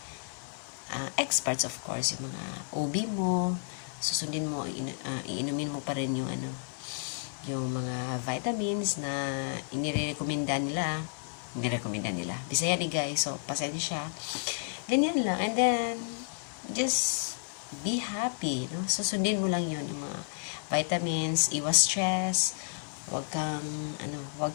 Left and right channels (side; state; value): right; silent; 57 dB below the other